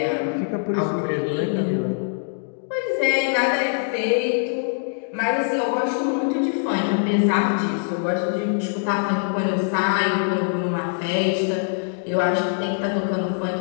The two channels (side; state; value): right; silent; digital silence